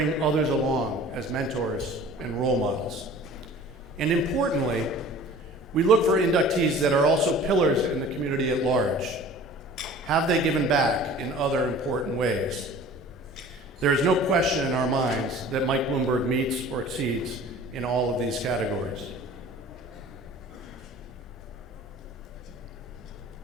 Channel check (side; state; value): both; normal; correlation 0.45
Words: others along as mentors and role models. And importantly, we look for inductees that are also pillars in the community at large. Have they given back in other important ways? There is no question in our minds that Mike Bloomberg meets or exceeds in all of these categories.